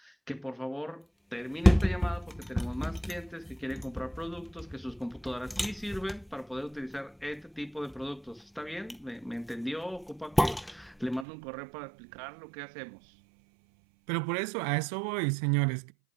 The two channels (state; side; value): drops out; left; at 11.2 s